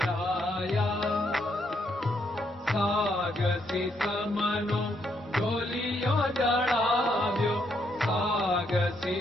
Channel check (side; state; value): both; normal; correlation 0.75